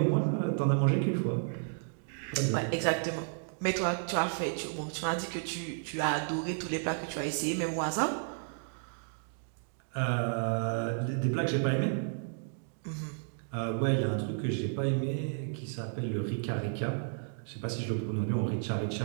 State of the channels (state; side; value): silent; left; digital silence